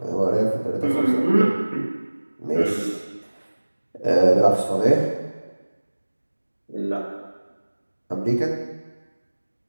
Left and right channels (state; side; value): inverted; both; correlation -1.00